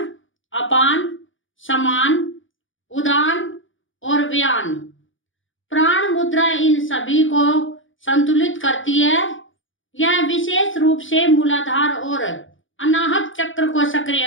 अपान, समान, उदान और व्यान। प्राण मुद्रा इन सभी को संतुलित करती है। यह विशेष रूप से मूलाधार और अनाहत चक्र को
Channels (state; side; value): late; right; 0.57 ms